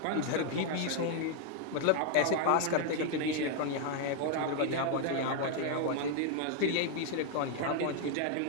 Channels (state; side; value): different; both; correlation 0.01